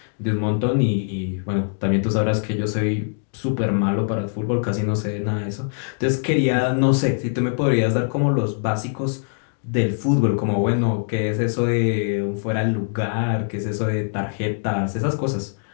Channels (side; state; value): right; silent; 64 dB below the other